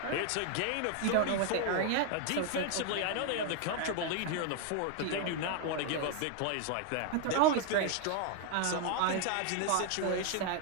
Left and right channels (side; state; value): both; different; correlation 0.01